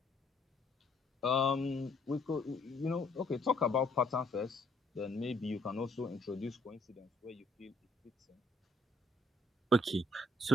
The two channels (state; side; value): normal; both; correlation 0.67